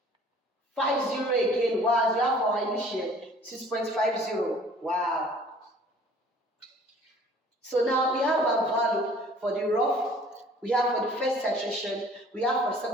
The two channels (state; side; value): normal; both; correlation 0.52